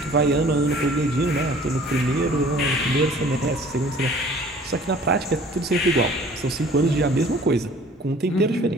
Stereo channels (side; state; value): both; normal; correlation 0.51